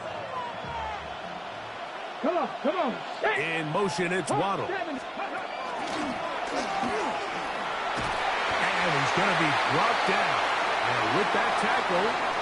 Come on. In motion, it's Waddle. And he's going to be brought down. And with that tackle,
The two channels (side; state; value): both; identical; correlation 1.00